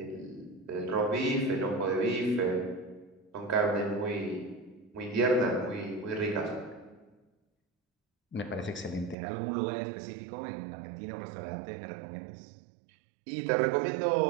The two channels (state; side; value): drops out; left; at 9.2 s